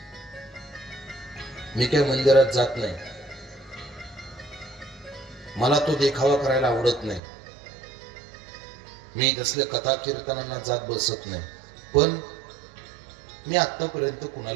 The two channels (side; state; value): left; drops out; at 7.2 s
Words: मी काय मंदिरात जात नाही, मला तो देखावा करायला आवडत नाही, मी तसले कथा कीर्तनांना जात बसत नाही, पण मी आतापर्यंत